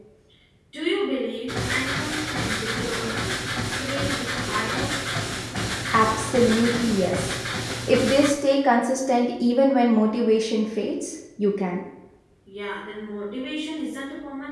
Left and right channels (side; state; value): both; identical; correlation 1.00